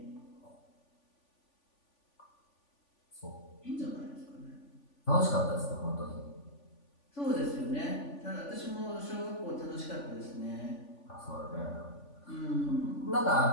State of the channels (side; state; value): right; late; 3.5 ms